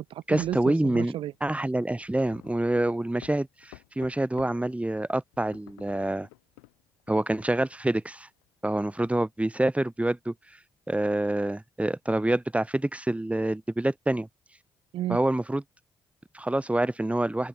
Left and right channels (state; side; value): normal; both; correlation 0.96